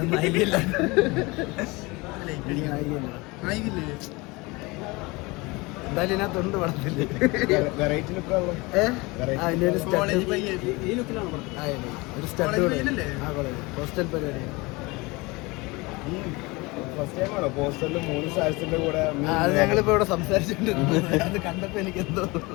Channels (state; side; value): quieter; right; 24.4 dB